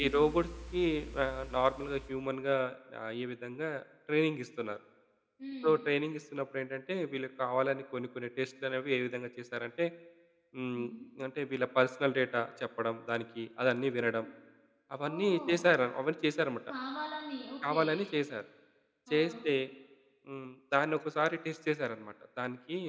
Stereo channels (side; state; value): both; identical; correlation 1.00